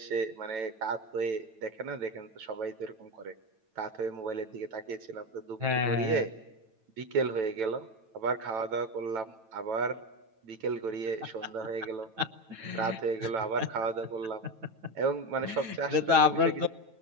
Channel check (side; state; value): left; late; 9.1 ms